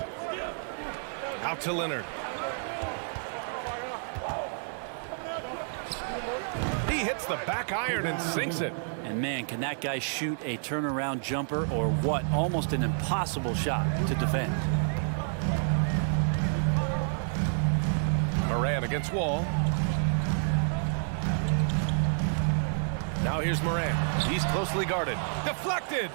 Out to Leonard. He hits the back iron and sinks it. And man, can that guy shoot a turnaround jumper or what? Almost an impossible shot to defend. Morant against Wall. Now here's Morant. He's closely guarded. Deflected.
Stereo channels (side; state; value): left; silent; digital silence